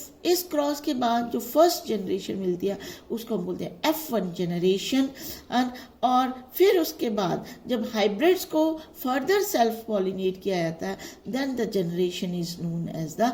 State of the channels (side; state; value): both; identical; correlation 1.00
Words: इस क्रॉस के बाद जो फर्स्ट जनरेशन मिलती है उसको हम बोलते हैं F1 जनरेशन. और फिर उसके बाद जब हाइब्रिड्स को फर्दर सेल्फ पॉलिनेट किया जाता है, then the generation is known as the